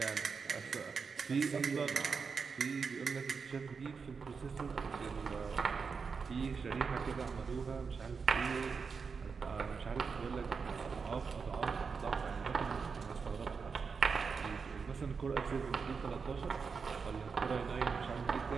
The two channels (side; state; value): left; quieter; 5.4 dB